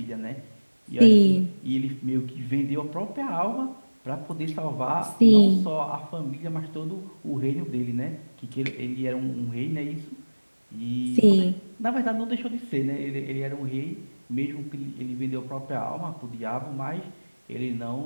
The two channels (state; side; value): inverted; both; correlation -1.00